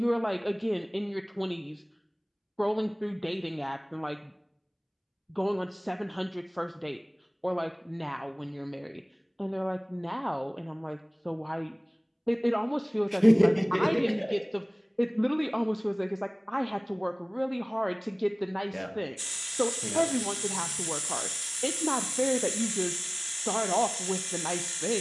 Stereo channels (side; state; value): both; identical; correlation 1.00